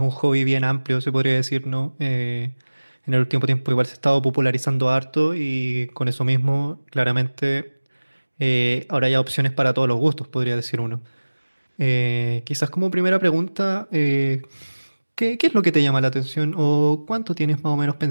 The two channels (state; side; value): inverted; both; correlation -1.00